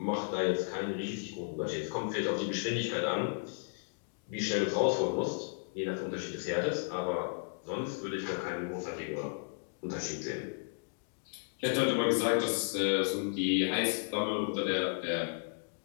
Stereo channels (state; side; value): silent; right; digital silence